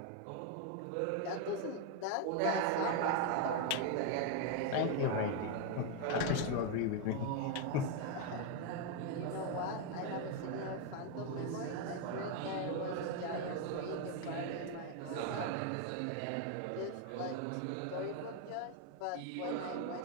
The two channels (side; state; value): both; different; correlation 0.01